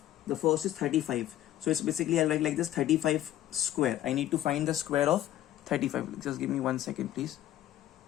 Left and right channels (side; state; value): right; quieter; 13.0 dB